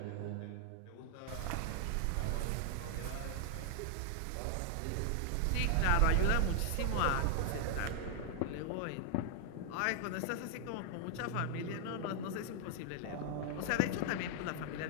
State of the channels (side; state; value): both; different; correlation 0.00